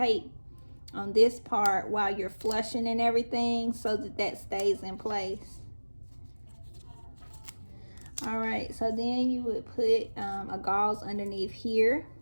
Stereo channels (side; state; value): both; inverted; correlation -1.00